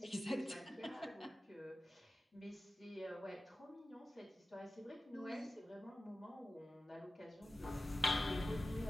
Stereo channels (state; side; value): normal; both; correlation 0.94